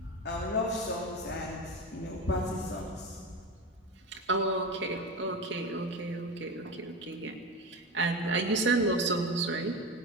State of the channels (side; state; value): both; normal; correlation 0.23